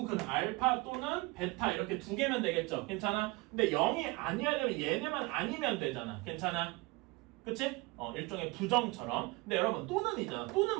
근 알파 또는 베타 이렇게 두 개면 되겠죠? 괜찮아? 근데 0이 아니어야 되면 얘네만 아니면 되잖아. 괜찮아? 그치? 일종의 부정처럼. 근데 여러분 또는이잖아.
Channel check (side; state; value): left; quieter; 24.5 dB